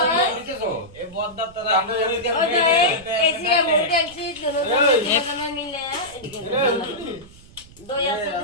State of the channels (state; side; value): noise; right; rumble, 22 dB below the sound